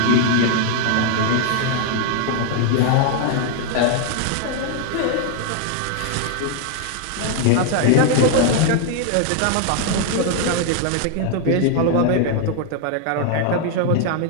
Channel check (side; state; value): both; different; correlation 0.00